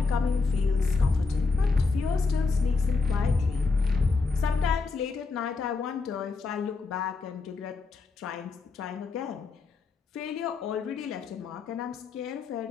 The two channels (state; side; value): quieter; right; 4.3 dB